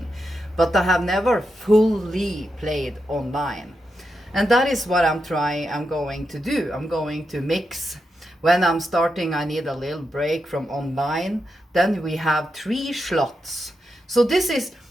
But I have never fully played online. And that is what I'm going to do. I'm going to mix. When I'm starting, I need a little break from online. Then we have 3 slots. So this is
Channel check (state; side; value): normal; both; correlation 0.86